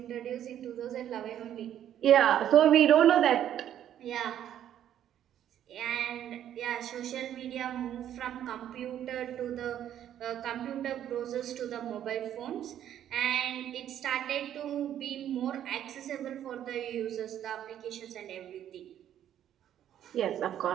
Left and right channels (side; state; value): left; quieter; 10.7 dB